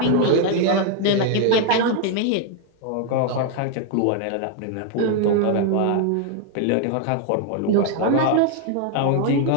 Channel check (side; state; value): both; different; correlation 0.00